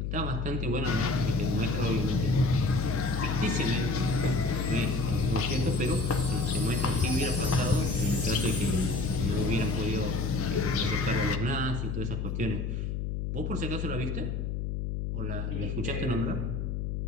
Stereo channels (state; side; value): noise; left; hum, 2 dB below the sound